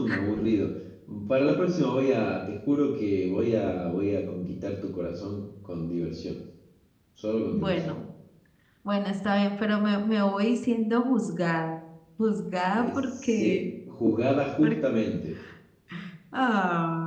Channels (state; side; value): identical; both; correlation 1.00